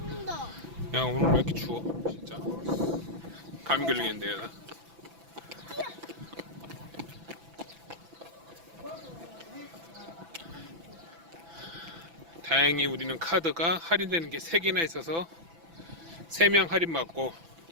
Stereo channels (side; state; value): left; late; 6.0 ms